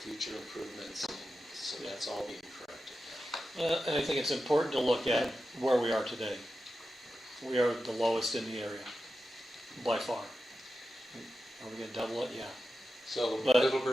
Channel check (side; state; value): both; normal; correlation 0.91